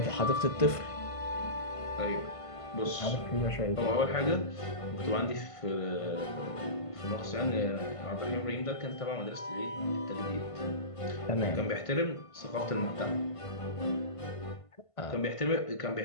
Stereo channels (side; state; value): right; late; 1.5 ms